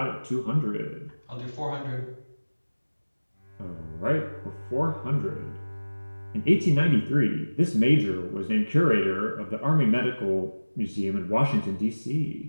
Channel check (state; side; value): inverted; both; correlation -1.00